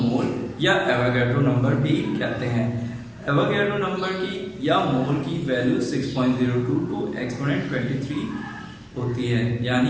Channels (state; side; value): identical; both; correlation 1.00